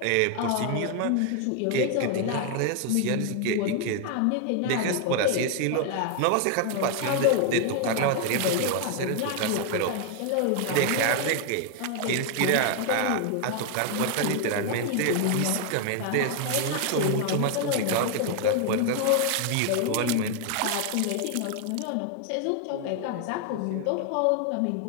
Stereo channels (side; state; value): both; different; correlation 0.00